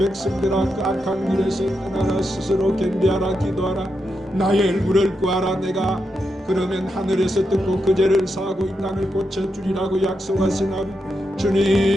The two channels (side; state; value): both; normal; correlation 0.85